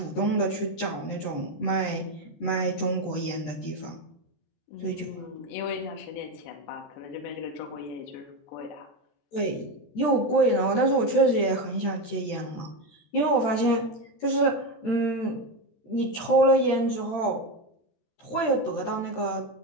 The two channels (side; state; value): right; late; 13 ms